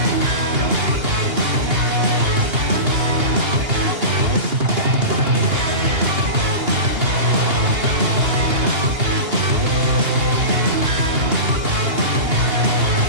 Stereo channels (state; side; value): late; left; 2.8 ms